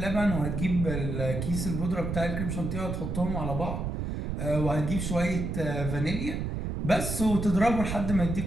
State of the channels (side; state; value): right; noise; rumble, 3 dB below the sound